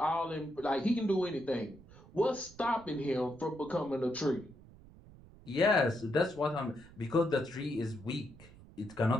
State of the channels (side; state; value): right; noise; rumble, 21 dB below the sound